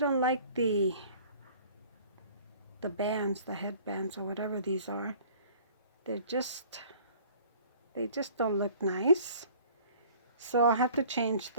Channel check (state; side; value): inverted; both; correlation -0.50